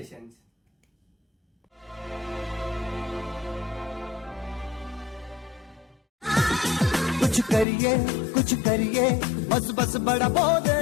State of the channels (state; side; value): drops out; right; at 7.7 s